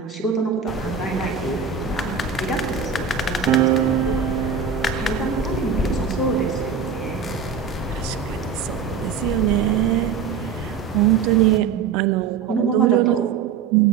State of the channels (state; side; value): quieter; left; 6.4 dB